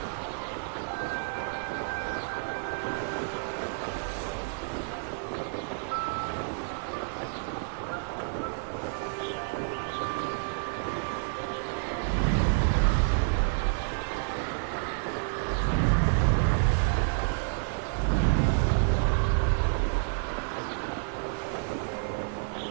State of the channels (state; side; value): silent; left; digital silence